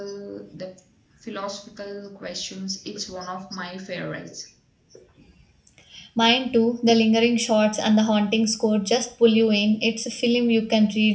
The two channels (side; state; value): both; identical; correlation 1.00